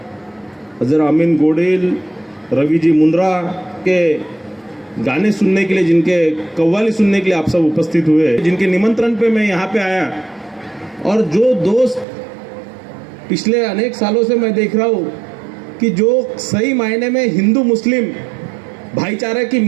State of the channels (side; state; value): left; drops out; at 12.1 s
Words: अजर अमीन गोडिल, रवि जी मुंद्रा के गाने सुनने के लिए, जिनके कव्वाली सुनने के लिए आप सब उपस्थित हुए, जिनके निमंत्रण पे मैं यहाँ पे आया, और जो दोस्त पिछले अनेक सालों से मैं देख रहा हूँ कि जो सही मायने में हिंदू मुस्लिम भाईचारे की